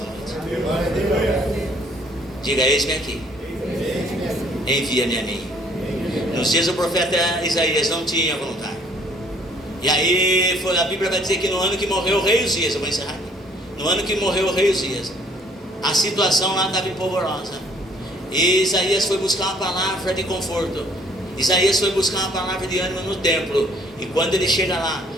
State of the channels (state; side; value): normal; both; correlation 0.61